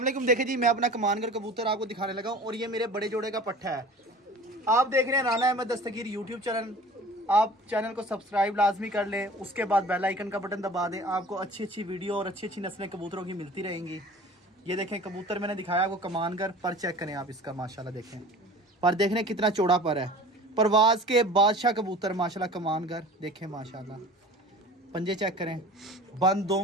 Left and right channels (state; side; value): normal; both; correlation 0.42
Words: वालेकुम। देखिए जी, मैं अपना कमानगर कबूतर आपको दिखाने लगा हूँ और ये मेरे बड़े जोड़े का पट्ठा है। आप देख रहे हैं राना अहमद दस्तगीर यूट्यूब चैनल। आप चैनल को सब्सक्राइब लाजमी कर लें, उसके बाद बेल आइकन का बटन दबा दें। आपको अच्छी अच्छी वीडियो और अच्छी अच्छी नस्लें कबूतरों की मिलती रहेंगी। ये देखें कबूतर मैंने दिखाया आपको कमानगर पर, चेक करें आप इसका माशाल्लाह। देखें पर, देख रहे हैं कितना चौड़ा पर है। परवाज के बादशाह कबूतर माशाल्लाह कमानगर। देखें माशाल्लाह, पंजे चेक करें, बंद